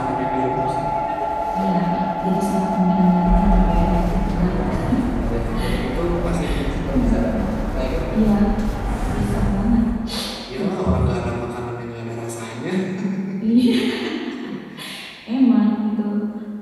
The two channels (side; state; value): both; identical; correlation 1.00